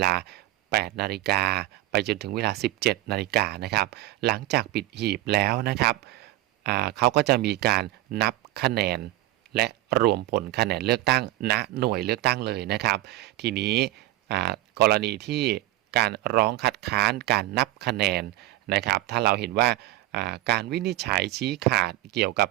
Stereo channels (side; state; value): left; quieter; 16.3 dB